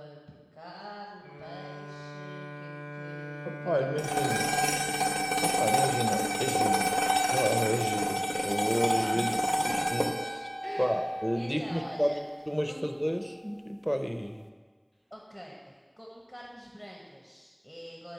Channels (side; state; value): both; identical; correlation 1.00